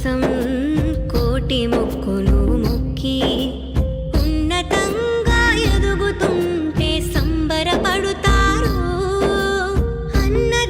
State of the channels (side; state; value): both; identical; correlation 1.00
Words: కోటి మొక్కులు మొక్కి ఉన్నతంగా ఎదుగుతుంటే సంబరపడుతారు.